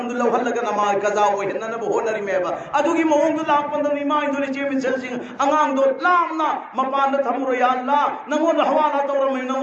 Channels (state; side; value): identical; both; correlation 1.00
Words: दु लहल लगा नमाज कजा हो हनन बो होनरी में बा अदु की मोंग दु लाप पंद इमाम दोले चेम चदिंग अंगांग दो लामना मपान थमरो या अल्लाह नमो हवाला तौर में